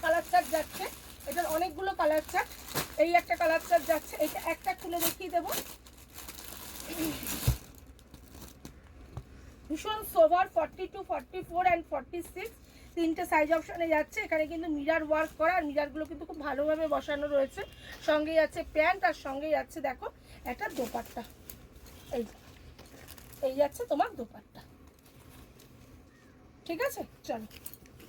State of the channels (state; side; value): identical; both; correlation 1.00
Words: কালার চার্ট যাচ্ছে, এটার অনেকগুলো কালার চার্ট। এই একটা কালার চার্ট যাচ্ছে, এটা একটা খুলে দেখিয়ে দেবো, ভীষণ সোভার 42, 44 অ্যান্ড 46, 3টে সাইজ অপশানে যাচ্ছে। এখানে কিন্তু মিরার ওয়ার্ক করা, আর মিরারগুলো কিন্তু খুব ভালোভাবে বসানো রয়েছে। সঙ্গে যাচ্ছে প্যান্ট, আর সঙ্গে যাচ্ছে দেখো একটা দোপাট্টা, এই যাচ্ছে তোমার দোপাট্টা। ঠিক আছে, চলো